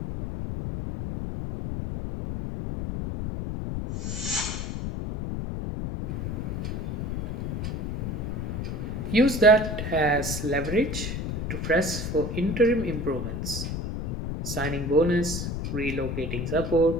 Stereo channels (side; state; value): left; noise; rumble, 3 dB below the sound